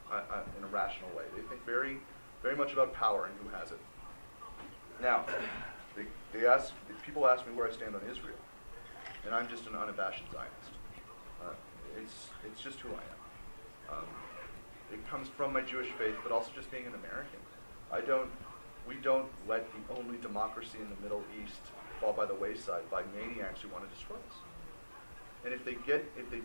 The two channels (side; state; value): both; inverted; correlation -1.00